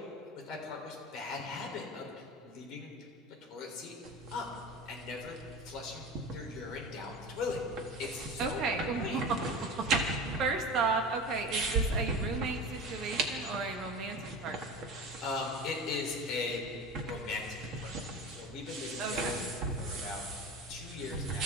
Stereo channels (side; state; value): both; normal; correlation 0.31